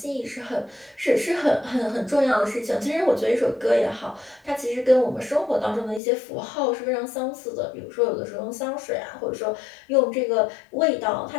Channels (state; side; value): drops out; right; at 6.0 s